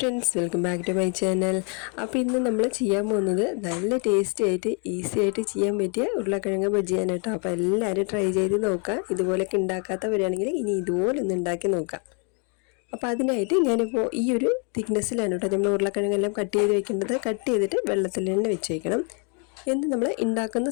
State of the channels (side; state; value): right; quieter; 37.6 dB